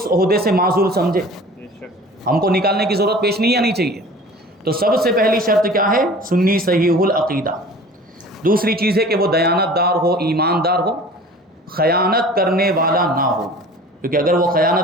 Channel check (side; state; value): both; normal; correlation 0.43